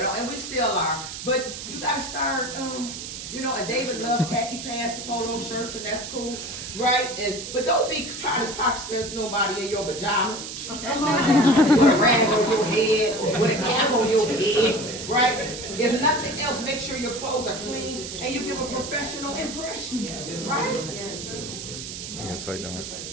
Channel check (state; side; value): noise; right; hiss, 8 dB below the sound